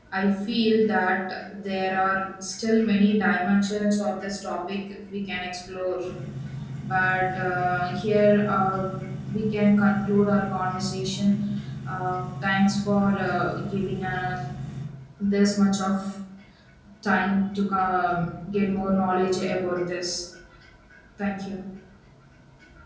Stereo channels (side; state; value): both; identical; correlation 1.00